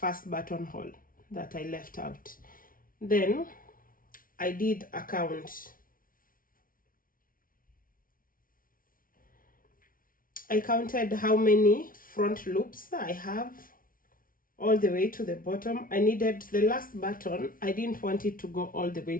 buttonhole that I left out. Then I did a count. I counted how many front loops I have all the way to the bottom. I needed the last button. I didn't want it to go all the way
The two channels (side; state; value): right; late; 0.41 ms